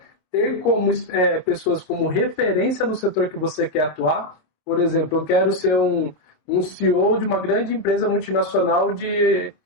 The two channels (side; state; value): right; late; 27 ms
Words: ter como pessoas como referência no setor que você quer atuar. Por exemplo, eu quero ser um CEO de uma grande empresa multinacional de